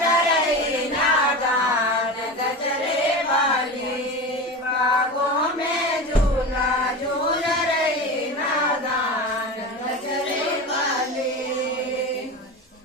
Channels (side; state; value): both; normal; correlation 0.27